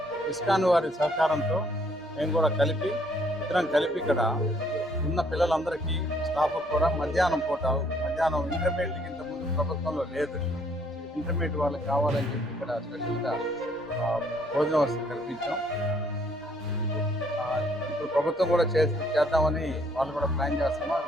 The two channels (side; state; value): both; normal; correlation 0.65